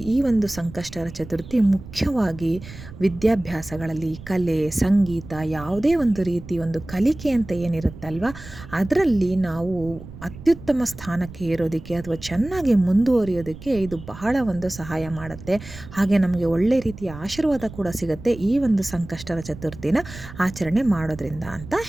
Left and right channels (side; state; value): right; noise; rumble, 15 dB below the sound